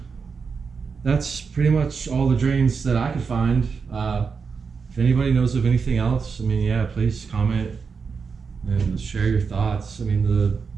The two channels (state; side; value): quieter; left; 5.4 dB